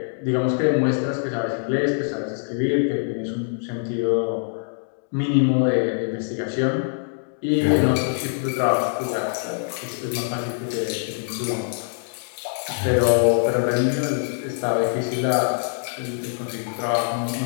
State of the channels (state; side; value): silent; right; digital silence